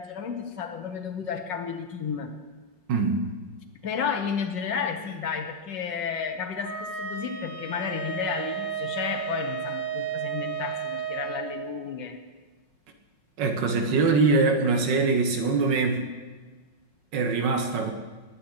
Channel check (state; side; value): late; left; 5.4 ms